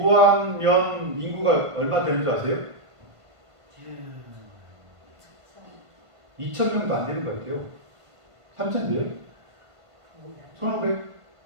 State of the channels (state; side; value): late; left; 1.5 ms